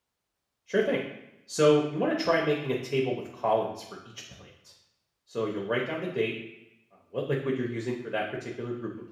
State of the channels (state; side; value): identical; both; correlation 1.00